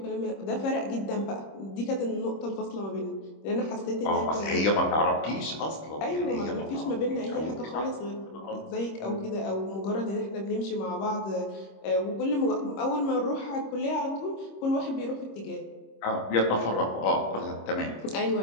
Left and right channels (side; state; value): right; late; 26 ms